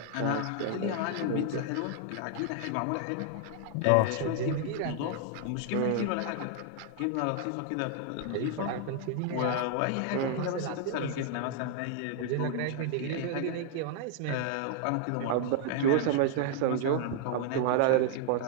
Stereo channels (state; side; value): different; both; correlation 0.00